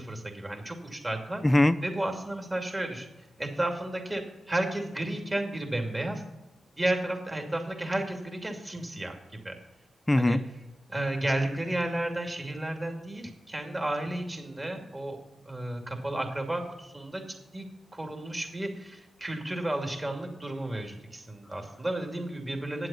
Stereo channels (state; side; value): normal; both; correlation 0.96